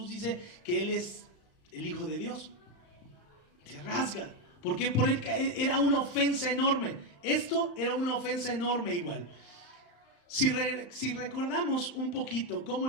dice que Él es el Hijo de Dios, se rasga. ¿Por qué? Porque era una ofensa enorme. Esto era una ofensa enorme igual. Si recordamos un poquito cómo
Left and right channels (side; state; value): right; late; 35 ms